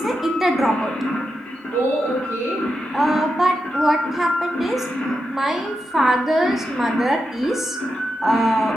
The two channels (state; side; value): normal; both; correlation 0.87